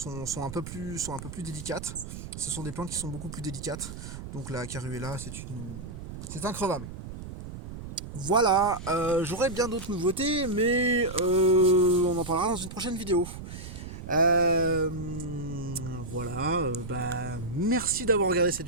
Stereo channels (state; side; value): noise; right; rumble, 10 dB below the sound